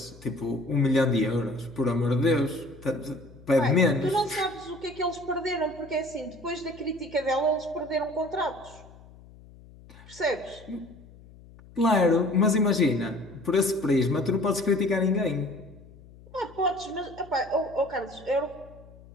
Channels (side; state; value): left; noise; hum, 22 dB below the sound